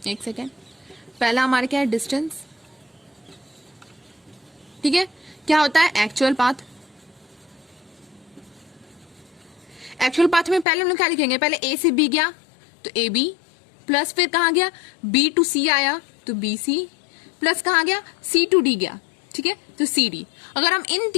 एक सेकेंड, पहला हमारा क्या है? डिस्टेंस। ठीक है, क्या होता है? Actual path. एक्चुअल पाथ में पहले हम लोग क्या लिखेंगे? पहले ए से बी गया तो ए बी, प्लस फिर कहाँ गया? बी टू सी आया तो बी सी, प्लस कहाँ गया? सी टू डी गया। ठीक है, तो सी डी। अगर हम इन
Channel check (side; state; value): right; drops out; at 10.7 s